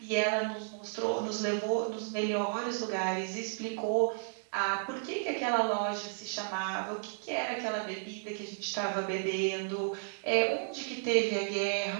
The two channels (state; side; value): silent; left; digital silence